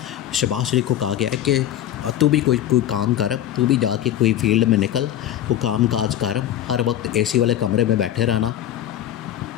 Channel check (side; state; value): right; quieter; 11.8 dB